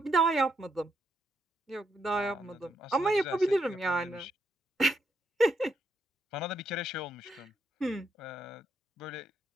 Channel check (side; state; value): both; normal; correlation 0.78